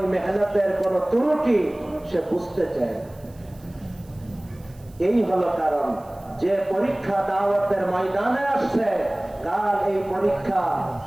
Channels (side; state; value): right; noise; hiss, 28 dB below the sound